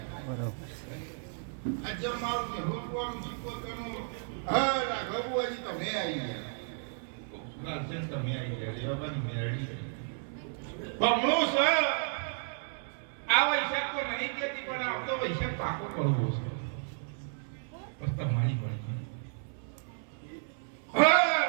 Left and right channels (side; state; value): left; silent; 56 dB below the other